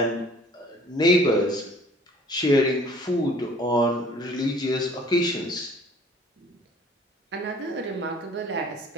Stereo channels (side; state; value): both; normal; correlation 0.53